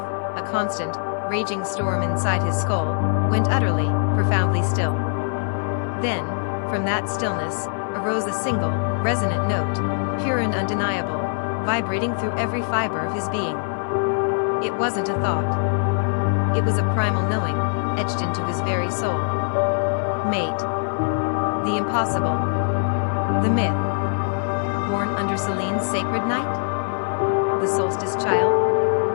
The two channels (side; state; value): right; silent; 64 dB below the other